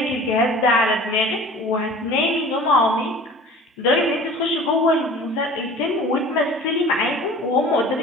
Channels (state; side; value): normal; both; correlation 0.43